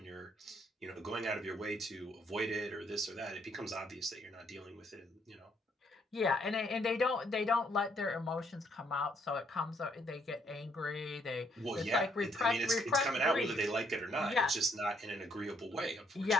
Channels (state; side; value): normal; both; correlation 0.70